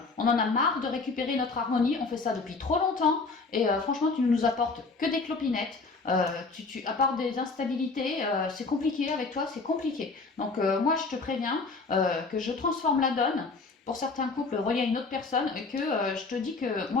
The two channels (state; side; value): quieter; right; 4.0 dB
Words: on en a marre de récupérer notre harmonie, on fait ça depuis trop longtemps et franchement tu ne nous apportes que des clopinettes. À part des instabilités, c'est compliqué avec toi, c'est compliqué. Donc moi je te préviens que je transforme la donne pour certains couples reliés à une autre personne et que je te dis que